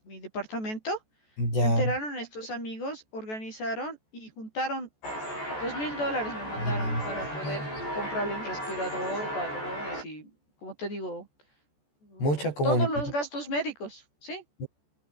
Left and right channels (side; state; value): right; late; 14 ms